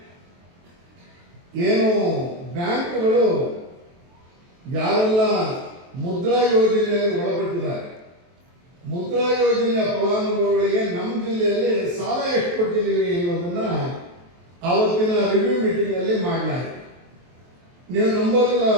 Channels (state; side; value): late; left; 23 ms